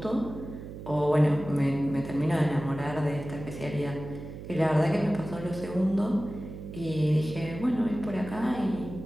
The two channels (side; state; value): right; noise; hum, 11 dB below the sound